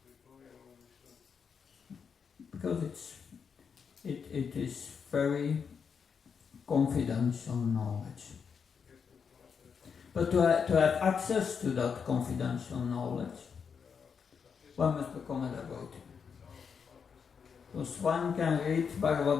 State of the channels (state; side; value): quieter; right; 6.4 dB